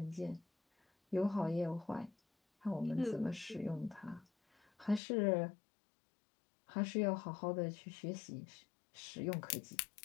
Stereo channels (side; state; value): right; drops out; at 5.0 s